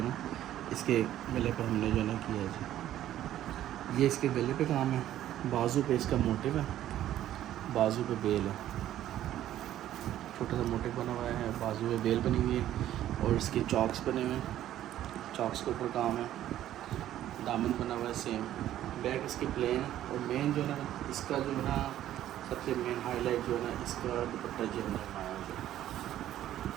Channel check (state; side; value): quieter; left; 12.5 dB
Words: ना इसके गले पे हमने जो है ना किया है जी। ये इसके गले पे काम है, बाजू पे इसका मोटिव है, बाजू पे बेल है, छोटा सा मोटिव बना हुआ है, बाजू पे बेल बनी हुई है, और इसके चॉक्स बने हुए हैं, चॉक्स के ऊपर काम है, दामन बना हुआ है सेम। बैक इसकी प्लेन है, और मेन जो है ना इसका जो है ना सबसे मेन हाईलाइट जो है ना इसका दुपट्टा जो है ना